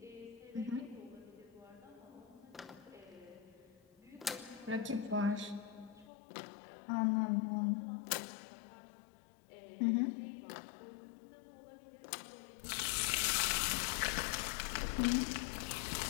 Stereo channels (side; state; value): right; drops out; at 6.1 s